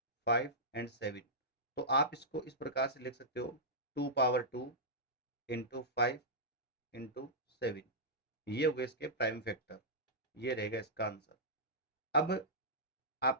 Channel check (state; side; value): normal; both; correlation -0.13